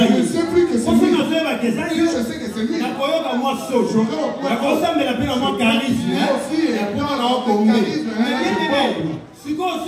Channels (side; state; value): both; identical; correlation 1.00